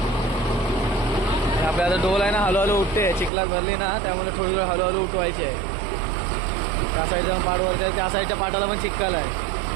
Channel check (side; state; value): left; drops out; at 3.3 s